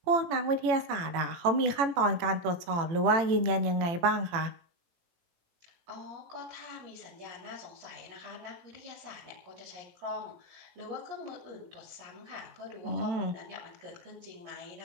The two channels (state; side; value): late; left; 18 ms